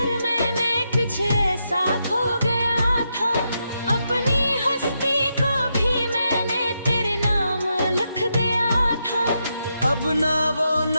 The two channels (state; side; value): inverted; both; correlation -0.83